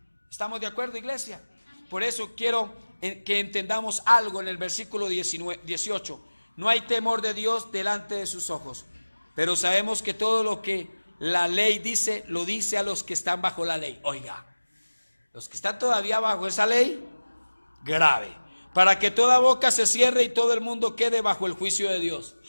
¿Estamos de acuerdo, iglesia? Por eso quiero que entendamos algo en el versículo 18. No hay temor de Dios delante de sus ojos, pero sabemos que todo lo que la ley dice, lo dice a los que están bajo la ley. Oiga, los que están todavía bajo esa ley, grave, para que toda boca se cierre y todo el mundo quede bajo el juicio de Dios.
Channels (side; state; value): both; inverted; correlation -1.00